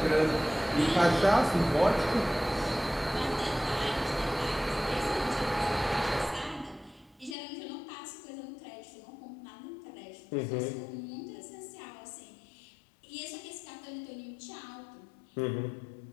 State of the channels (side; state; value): right; drops out; at 7.4 s